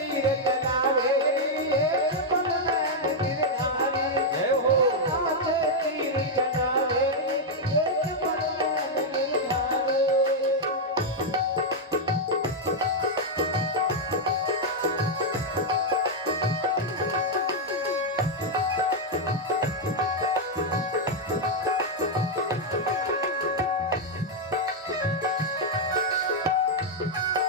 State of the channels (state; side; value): normal; both; correlation -0.01